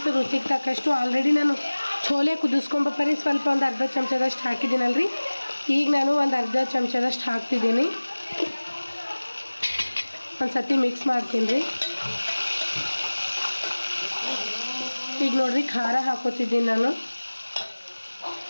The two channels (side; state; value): both; inverted; correlation -1.00